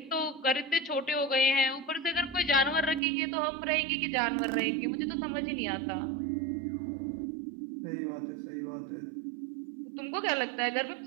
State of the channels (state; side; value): drops out; left; at 3.0 s